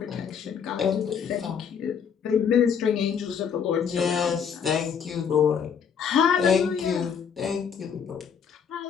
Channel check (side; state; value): right; quieter; 7.2 dB